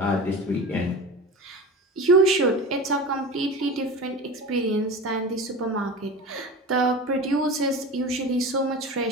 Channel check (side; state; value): both; normal; correlation 0.31